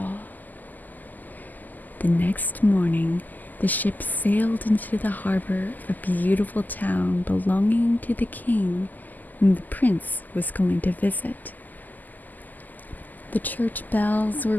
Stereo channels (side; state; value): right; late; 0.084 ms